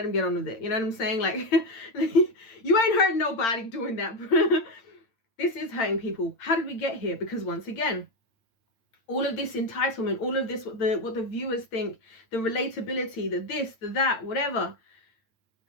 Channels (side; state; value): right; late; 8.9 ms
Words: him get on with it, you know what I'm saying? Like, you ain't hurting nobody doing that. This is hurting people. How did we get here? Because once again, all of this entitlement, all of this, what the viewers think, the relatability, the this, the that, whatever.